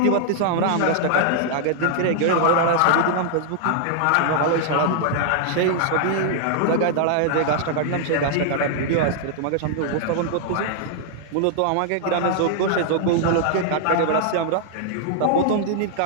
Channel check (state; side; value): different; both; correlation -0.01